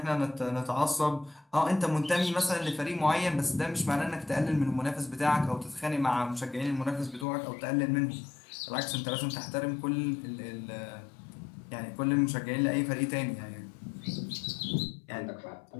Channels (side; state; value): right; drops out; at 7.2 s